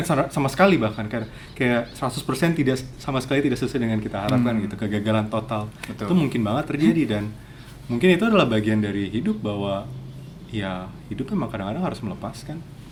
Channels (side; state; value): both; identical; correlation 1.00